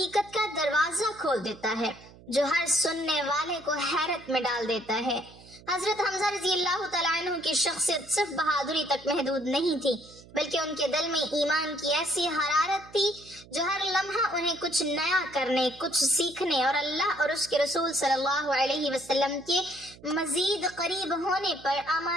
کا دروازہ کھول دیتا ہے جو ہر سننے والے کو حیرت میں ڈال دیتا ہے۔ حضرت حمزہ رضی اللہ تعالیٰ عنہ کی شخصیت صرف بہادری تک محدود نہیں تھی، بلکہ ان کے دل میں ایمان کی ایسی حرارت تھی جو ہر لمحہ انہیں کچھ نیا کرنے، کچھ سیکھنے اور اللہ اور اس کے رسول صلی اللہ علیہ وسلم کے مزید قریب ہونے پر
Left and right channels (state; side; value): noise; right; hum, 22 dB below the sound